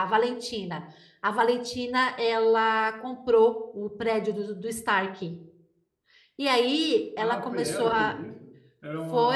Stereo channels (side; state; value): both; identical; correlation 1.00